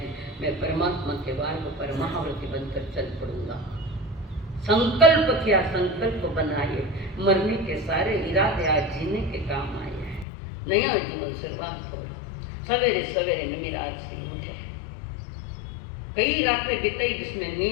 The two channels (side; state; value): right; drops out; at 10.2 s